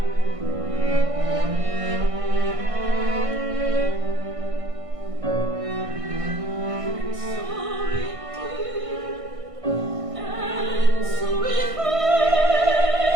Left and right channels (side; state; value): left; late; 1.6 ms